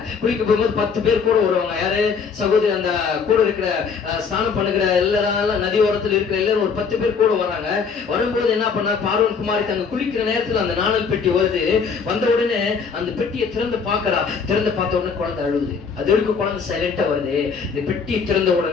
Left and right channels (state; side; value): quieter; right; 5.7 dB